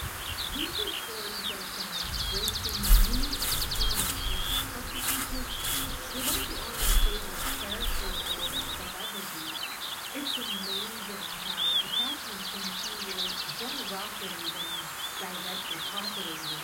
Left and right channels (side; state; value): both; identical; correlation 1.00